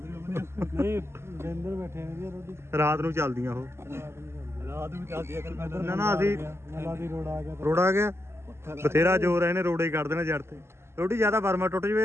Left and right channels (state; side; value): late; left; 0.12 ms